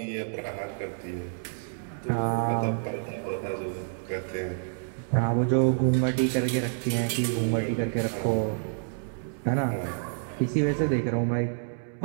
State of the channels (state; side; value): silent; left; digital silence